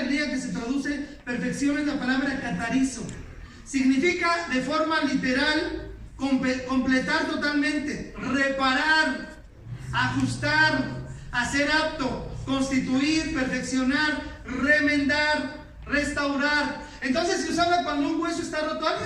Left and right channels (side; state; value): both; identical; correlation 1.00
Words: que se traduce perfección es la palabra catarizo. Significa de forma literal completar totalmente, reparar, ajustar, hacer apto, constituir, perfeccionar, remendar, restaurar. Entonces se usaba cuando un hueso está roto.